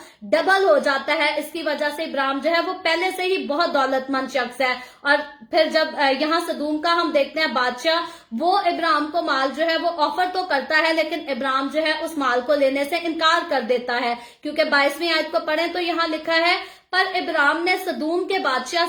ڈبل ہو جاتا ہے. اس کی وجہ سے ابراہیم جو ہے وہ پہلے سے ہی بہت دولت مند شخص ہے. اور پھر جب یہاں سدوم کا ہم دیکھتے ہیں بادشاہ, وہ ابراہیم کو مال جو ہے وہ آفر تو کرتا ہے, لیکن ابراہیم جو ہے اس مال کو لینے سے انکار کر دیتا ہے. کیونکہ 22ویں آیت کو پڑھیں تو یہاں لکھا ہے پر ابراہیم نے سدوم کے بادشاہ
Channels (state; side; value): identical; both; correlation 1.00